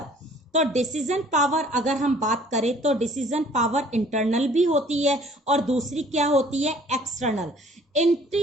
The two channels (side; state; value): both; normal; correlation 0.55